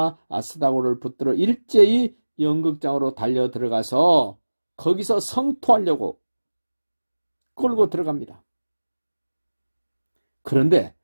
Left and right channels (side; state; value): both; inverted; correlation -1.00